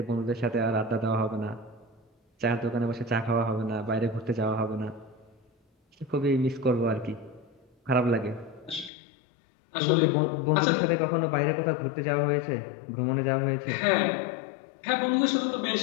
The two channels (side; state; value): right; drops out; at 8.9 s